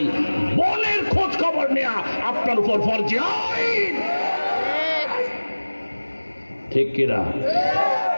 বোনের খোঁজ খবর নেয়া আপনার উপর ফরজ আইন, ঠিক কিনা?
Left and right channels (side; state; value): both; inverted; correlation -1.00